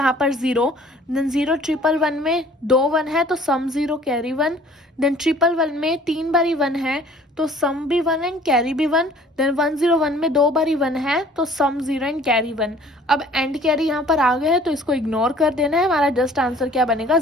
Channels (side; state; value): both; normal; correlation 0.52